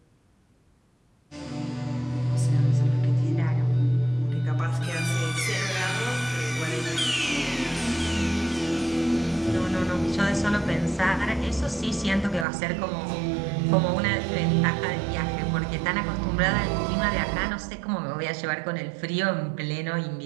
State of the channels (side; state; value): left; drops out; at 12.5 s